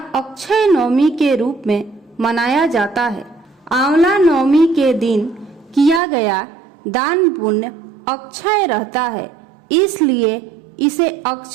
अक्षय नवमी के रूप में मनाया जाता है। आंवला नवमी के दिन किया गया दान पुण्य अक्षय रहता है, इसलिए इसे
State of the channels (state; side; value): drops out; left; at 6.0 s